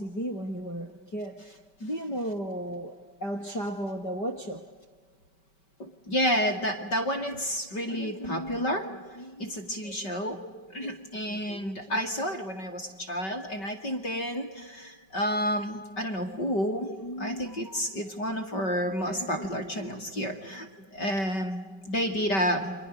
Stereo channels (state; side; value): late; right; 5.2 ms